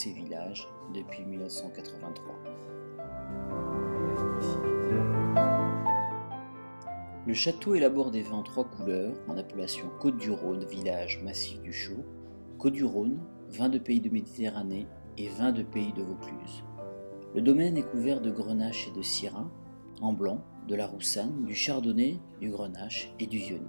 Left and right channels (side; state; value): both; inverted; correlation -1.00